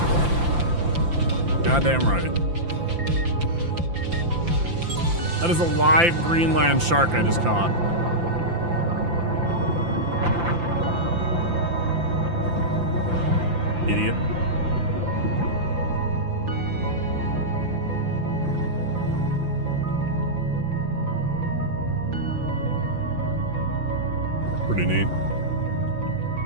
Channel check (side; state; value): left; late; 5.8 ms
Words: Goddamn right. That is a live Greenland shark I just caught. Idiot. Pretty neat.